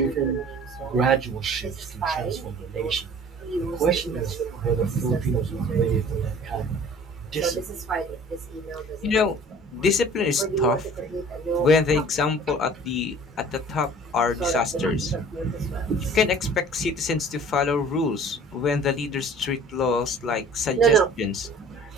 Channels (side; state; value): both; normal; correlation 0.47